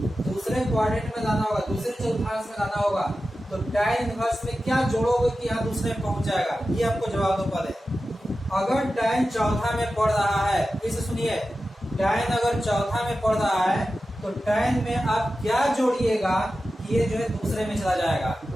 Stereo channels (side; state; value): both; normal; correlation 0.93